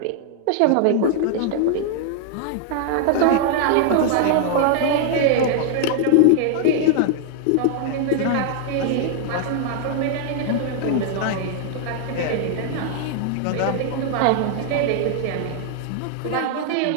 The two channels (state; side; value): different; both; correlation -0.01